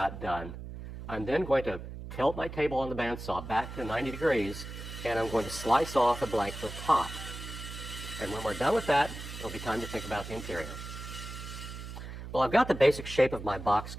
done, I'm then going to tilt my table on the bandsaw back to 90 degrees, and I'm going to slice off the blank to the top. And when we're done with that, it'll be time to think about the interior. Well, I've got the basic shape of my box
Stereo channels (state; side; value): noise; right; hum, 10 dB below the sound